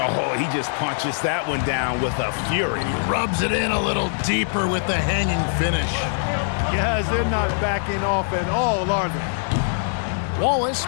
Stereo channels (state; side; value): silent; right; digital silence